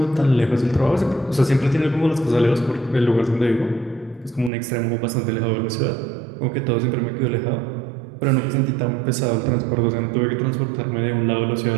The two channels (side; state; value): left; drops out; at 4.5 s